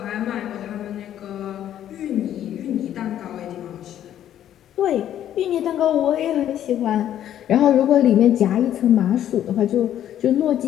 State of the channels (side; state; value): right; quieter; 11.1 dB